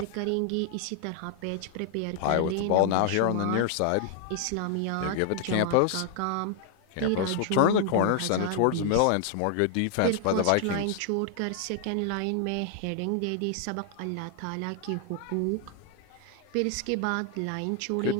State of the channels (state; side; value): different; both; correlation 0.00